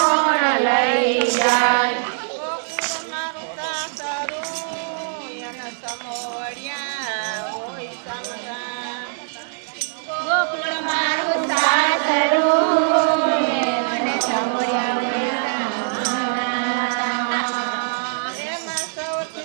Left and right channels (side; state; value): left; silent; digital silence